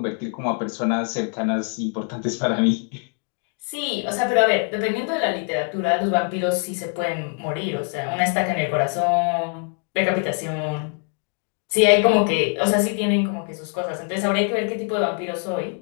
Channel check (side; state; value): right; quieter; 39.2 dB